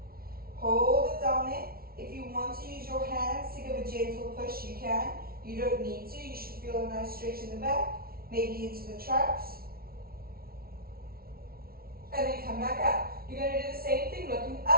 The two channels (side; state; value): left; late; 0.44 ms